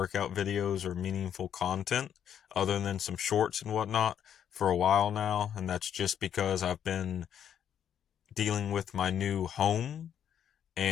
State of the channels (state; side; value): quieter; right; 9.2 dB